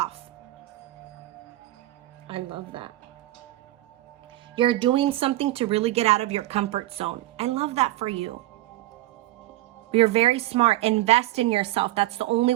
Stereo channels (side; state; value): left; quieter; 16.5 dB